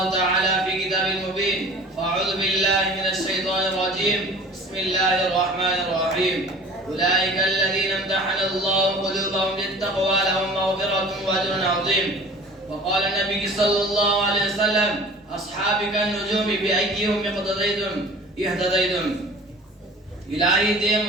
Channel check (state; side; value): normal; both; correlation 0.44